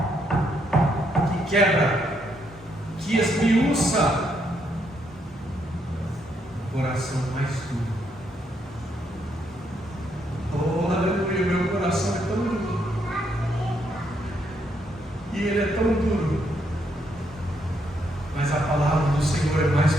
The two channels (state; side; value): normal; both; correlation 0.76